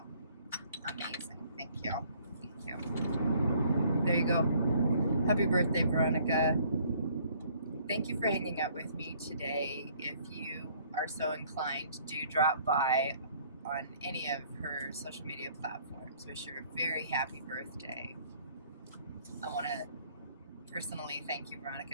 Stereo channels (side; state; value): both; inverted; correlation -0.61